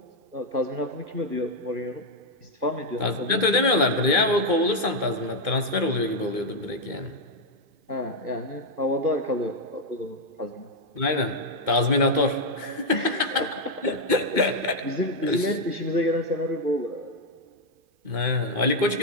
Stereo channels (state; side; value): late; left; 2.5 ms